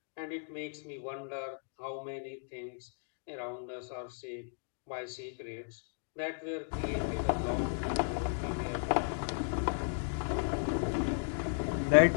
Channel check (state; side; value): silent; right; digital silence